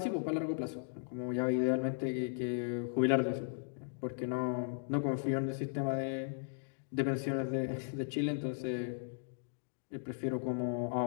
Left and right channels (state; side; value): silent; right; digital silence